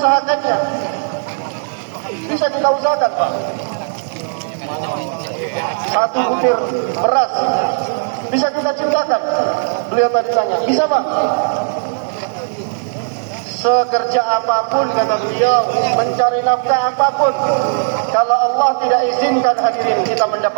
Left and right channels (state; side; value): silent; left; 56 dB below the other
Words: Bisa kita usahakan, Pak. Satu butir beras bisa kita ciptakan. Beliau tadi tanya, bisa Pak? Sekerja apapun kata beliau, mencari nafkah apapun, kalau Allah tidak izinkan hadirin kita